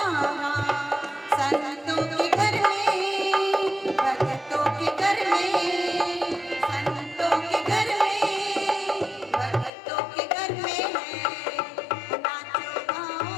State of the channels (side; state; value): right; drops out; at 9.7 s